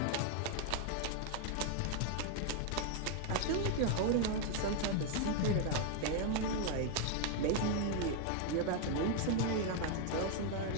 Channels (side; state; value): both; different; correlation 0.00